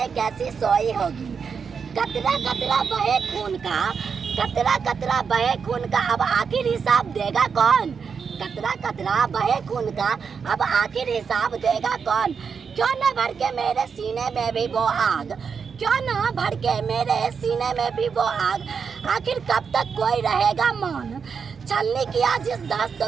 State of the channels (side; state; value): left; quieter; 6.1 dB